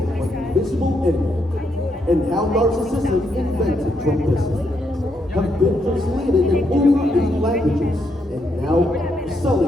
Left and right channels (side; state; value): both; normal; correlation 0.78